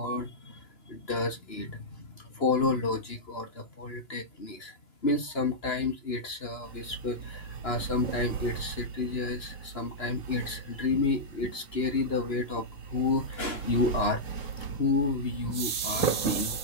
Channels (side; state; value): right; late; 2.9 ms